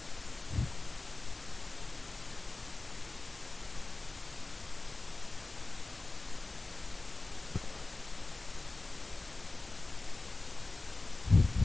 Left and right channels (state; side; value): quieter; right; 3.2 dB